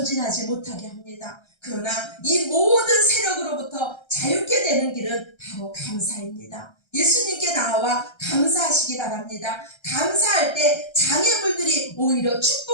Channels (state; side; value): late; right; 1.3 ms